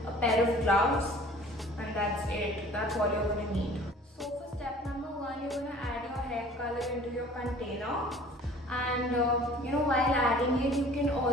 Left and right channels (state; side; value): normal; both; correlation 0.49